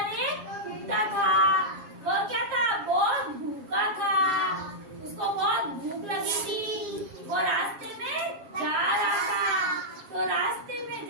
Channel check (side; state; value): left; late; 7.4 ms